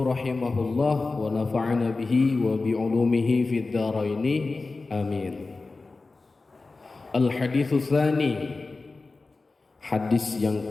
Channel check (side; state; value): right; quieter; 3.7 dB